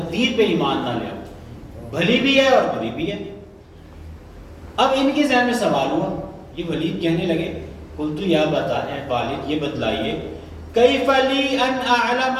پہ ایمان نہ لے آؤ، بھلی بھی ہے اور بری بھی ہے. اب ان کے ذہن میں سوال ہوا، یہ ولید کہنے لگے قلت یا بتا، اے والد یہ بتلائیے، کیف لی ان اعلم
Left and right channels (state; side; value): identical; both; correlation 1.00